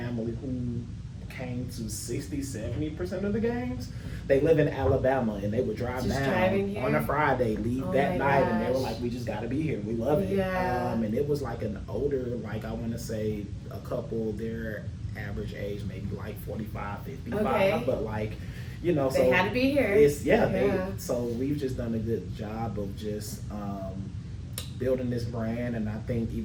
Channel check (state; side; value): identical; both; correlation 1.00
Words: who came to 60-70% of the games. They live in Alabama and they would drive down on a Friday, leave that night, and they were like, we just got to be here. We love it. And it was like an older, like I want to say a couple, their average age maybe like 45, 55, but like, so they had to be here. So we've just done a good job of just building this brand, and I think